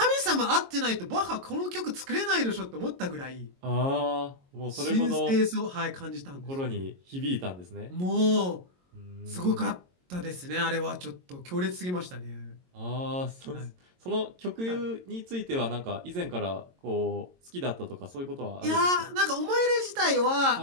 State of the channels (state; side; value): late; left; 22 ms